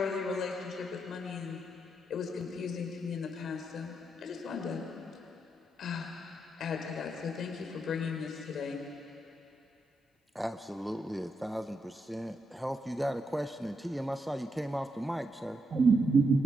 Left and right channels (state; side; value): normal; both; correlation 0.81